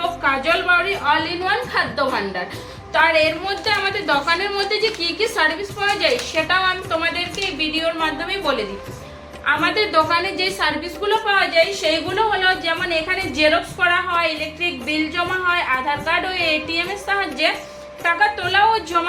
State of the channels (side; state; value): both; identical; correlation 1.00